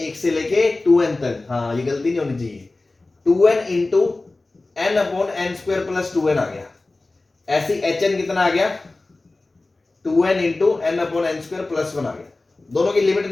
1 से लेके 2n तक। हाँ ये गलती नहीं होनी चाहिए। 2n into n upon n square plus 2n आ गया। ऐसी hn कितना आ गया? 2n into n upon n square plus 1 आ गया। दोनों की लिमिट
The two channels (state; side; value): quieter; right; 3.2 dB